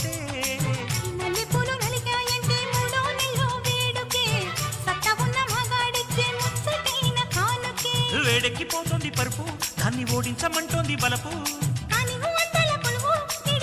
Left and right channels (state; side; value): identical; both; correlation 1.00